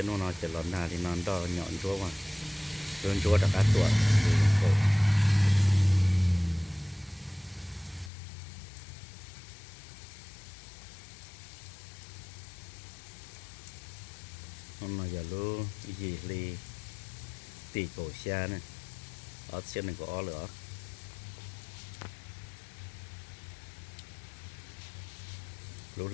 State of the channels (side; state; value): right; drops out; at 8.1 s